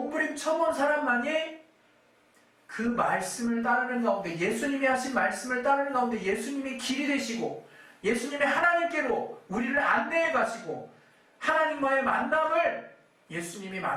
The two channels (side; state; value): both; identical; correlation 1.00